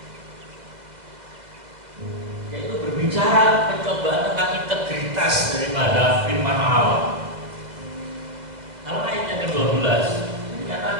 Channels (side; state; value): left; late; 2.1 ms